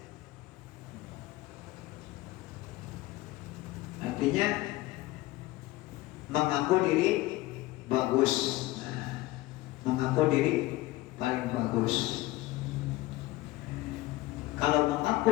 Artinya mengaku diri bagus, mengaku diri paling bagus. Kalau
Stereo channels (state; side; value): quieter; right; 18.0 dB